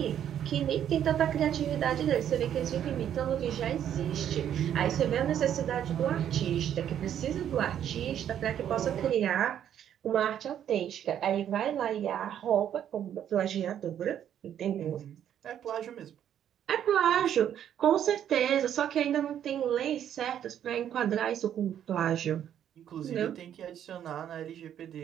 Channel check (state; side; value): quieter; left; 10.0 dB